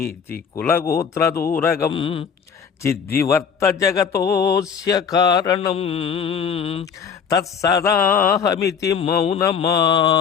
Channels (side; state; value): right; quieter; 6.9 dB